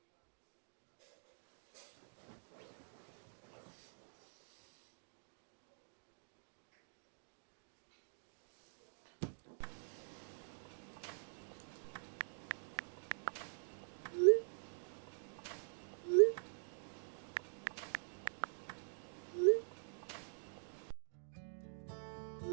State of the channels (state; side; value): silent; left; digital silence